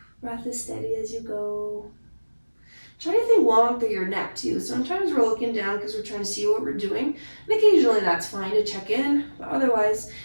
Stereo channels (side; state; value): both; inverted; correlation -1.00